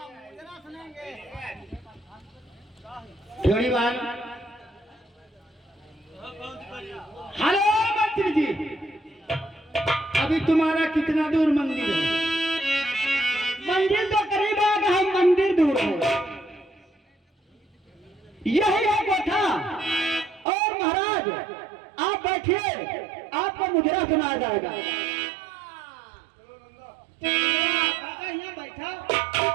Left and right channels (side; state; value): left; drops out; at 20.5 s